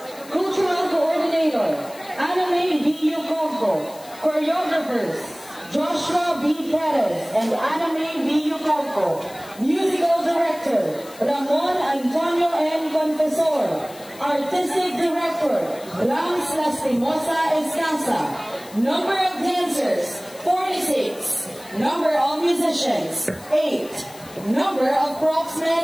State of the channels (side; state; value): left; noise; hiss, 20 dB below the sound